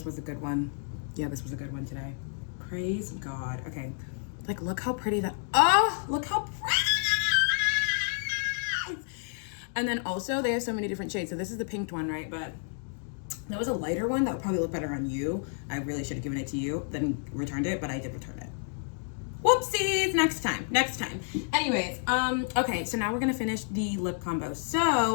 was a good one. Yeah, this was a good one today. Praise God. Okay, like look how pretty that, oh, look how pretty. And then also they have so many different shades. So this is the pink one, right? But there was a lighter one that would probably look better on you. I really should have given it to you, then returned it, but I did return it. Whoopsies, next time. Anyways, okay, so now we're gonna finish the lip combo.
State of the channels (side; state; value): right; silent; 58 dB below the other